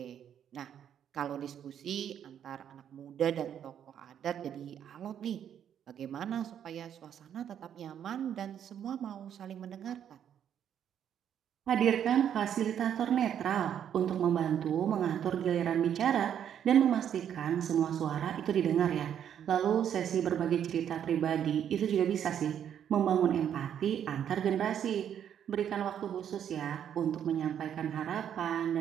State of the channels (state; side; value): quieter; left; 9.3 dB